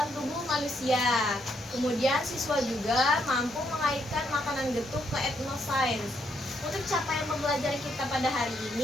tubuh manusia. Kemudian siswa juga mampu mengaitkan makanan getuk ke etnosains. Untuk capaian pembelajaran kita pada hari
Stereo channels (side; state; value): both; normal; correlation 0.76